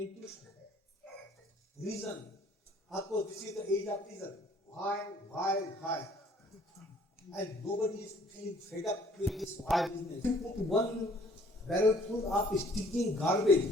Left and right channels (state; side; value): normal; both; correlation 0.58